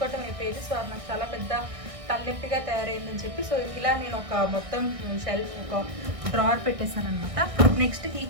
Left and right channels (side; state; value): left; late; 1.6 ms